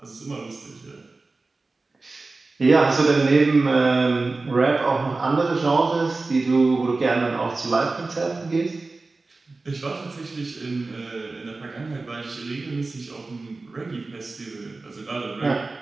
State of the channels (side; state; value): left; quieter; 3.5 dB